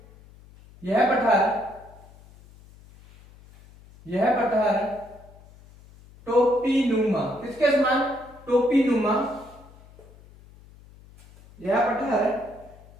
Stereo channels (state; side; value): noise; left; hum, 24 dB below the sound